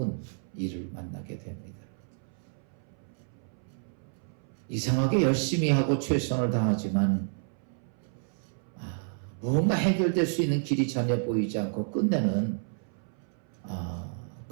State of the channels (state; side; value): silent; left; 58 dB below the other